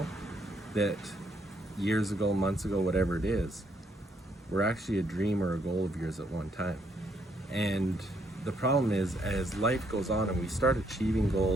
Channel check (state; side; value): normal; both; correlation 0.72